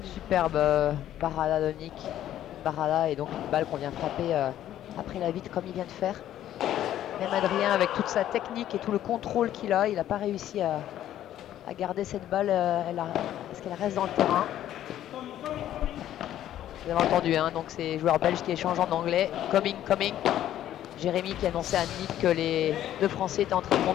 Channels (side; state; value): right; quieter; 12.0 dB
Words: Superbe parada de Nick. Parada et donc une balle qu'on vient frapper après la vitre comme il vient de faire. Même Adrien, avec toute sa technique et tout le contrôle qu'il a, il n'a pas réussi à garder cette balle. Est-ce qu'elle reste dans le terrain? Vous avez entendu, hein, donc c'est les joueurs belges qui échangent en anglais. Coming, coming. Jérémy qui annonçait à Nick que les deux Français étaient en train de